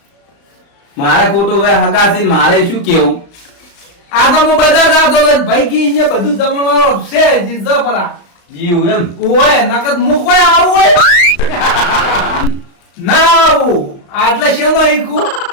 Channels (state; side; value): late; right; 35 ms